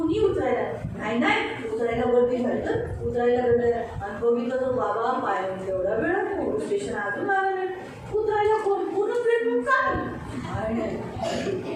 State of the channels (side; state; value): both; identical; correlation 1.00